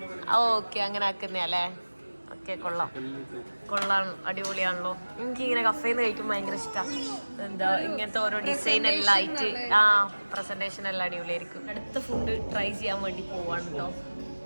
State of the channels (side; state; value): both; inverted; correlation -1.00